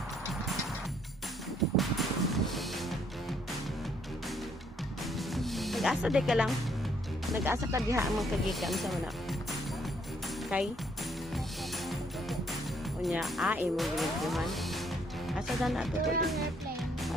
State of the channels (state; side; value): normal; both; correlation 0.68